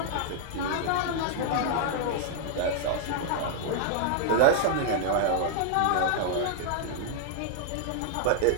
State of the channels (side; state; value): both; different; correlation -0.01